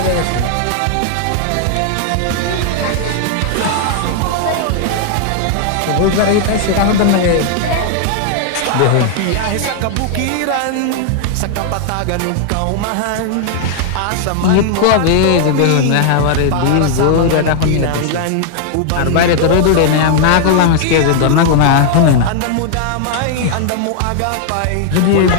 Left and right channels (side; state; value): both; different; correlation 0.00